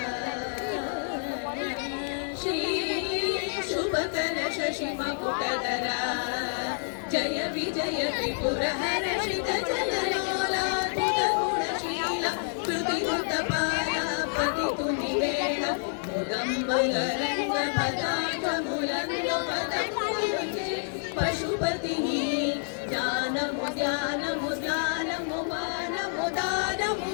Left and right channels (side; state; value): right; silent; 59 dB below the other